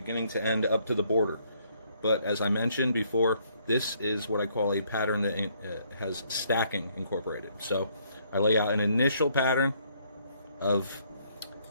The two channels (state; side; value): inverted; both; correlation -0.68